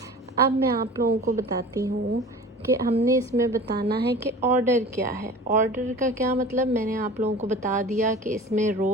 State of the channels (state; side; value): normal; both; correlation 0.39